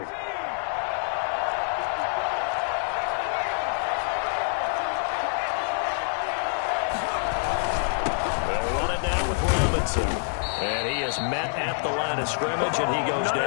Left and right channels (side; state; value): right; silent; 61 dB below the other